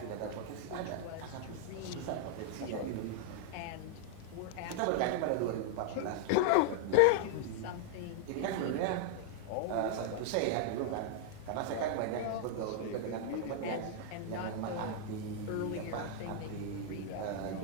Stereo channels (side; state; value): both; different; correlation -0.01